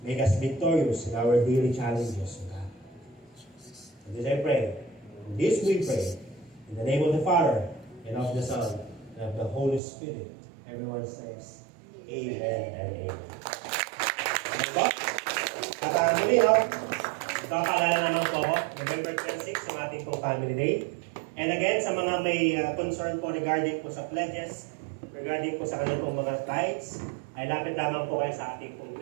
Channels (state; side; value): drops out; left; at 9.8 s